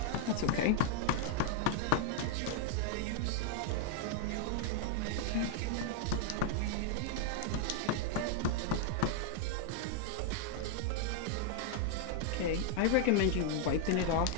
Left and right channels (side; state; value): both; different; correlation 0.00